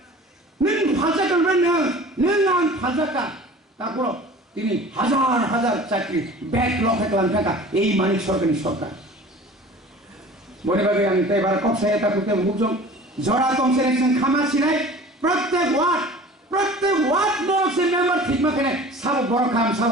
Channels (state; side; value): normal; both; correlation 0.43